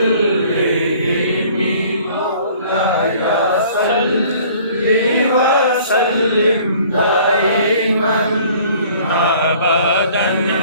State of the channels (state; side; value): inverted; both; correlation -0.53